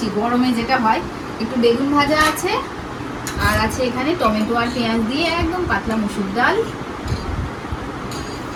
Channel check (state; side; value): identical; both; correlation 1.00